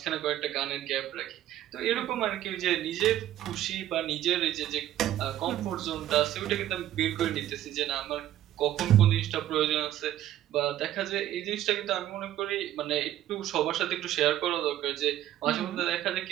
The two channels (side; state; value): left; quieter; 12.6 dB